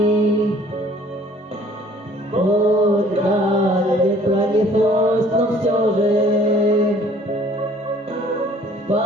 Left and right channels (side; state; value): both; normal; correlation 0.55